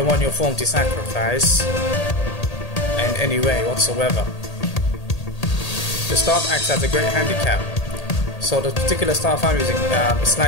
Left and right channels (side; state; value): right; late; 1.8 ms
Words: want your form to sacrifice in any way whatsoever. The staff acts as a great handicap. So the particular staff I'm using is